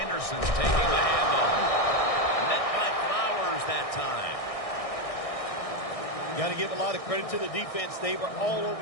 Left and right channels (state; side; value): late; right; 1.6 ms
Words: taking the handoff. Met by Flowers that time. Got to give a lot of credit to the defense. They were all